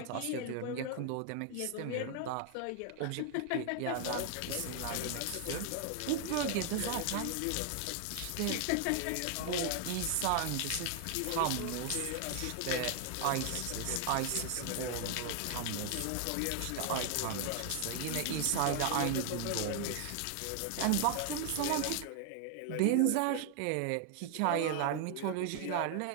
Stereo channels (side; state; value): both; different; correlation 0.00